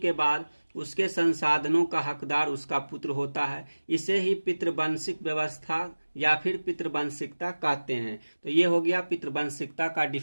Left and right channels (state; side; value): inverted; both; correlation -1.00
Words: बाद उसके संसाधनों का हकदार उसका पुत्र होता है। इसे ही पितृवंशिक व्यवस्था या फिर पितृवंशिकता कहते हैं। तो ये हो गया पितृवंशिकता का